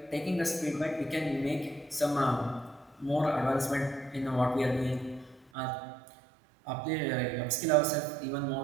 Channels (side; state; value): left; drops out; at 5.5 s